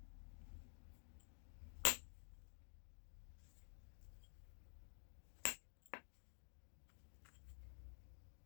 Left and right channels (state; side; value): silent; right; digital silence